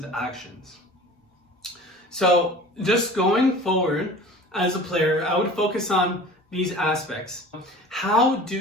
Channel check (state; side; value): normal; both; correlation 0.41